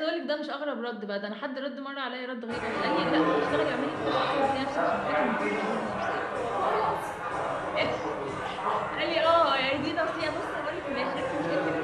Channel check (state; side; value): identical; both; correlation 1.00